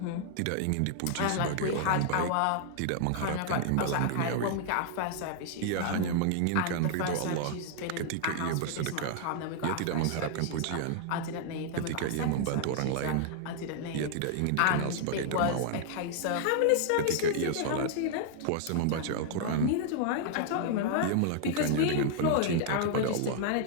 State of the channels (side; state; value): both; different; correlation 0.00